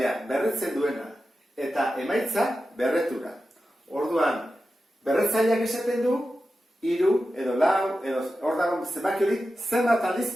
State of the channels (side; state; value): both; normal; correlation 0.92